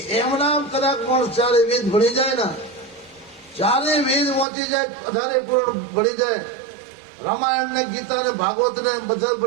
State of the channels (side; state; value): left; drops out; at 4.5 s